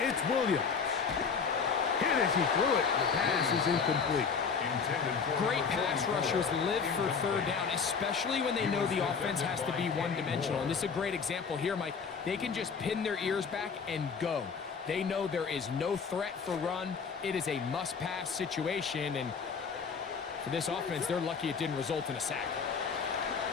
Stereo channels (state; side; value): quieter; right; 5.8 dB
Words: it's Williams. Hit as he threw it. The pass is incomplete. Great pass rushers live for third down, especially when they know the offense has to be one-dimensional. And this is a great example here, Mike. They can just pin their ears back and go. They know there is no threat for run. It is a must-pass situation, and for this offense, they're lucky it didn't result in a sack.